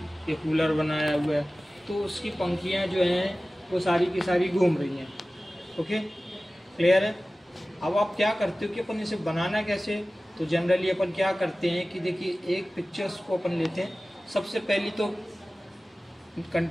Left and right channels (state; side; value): normal; both; correlation 0.97